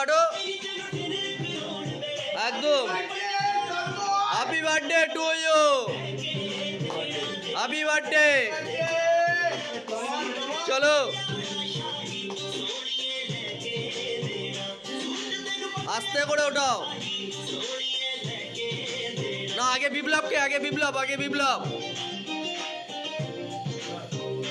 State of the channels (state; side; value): identical; both; correlation 1.00